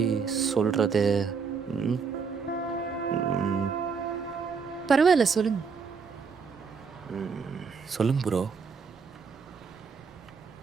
சொல்கிறது? பரவாயில்ல, சொல்லுங்க. சொல்லுங்க ப்ரோ.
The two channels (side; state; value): left; quieter; 5.6 dB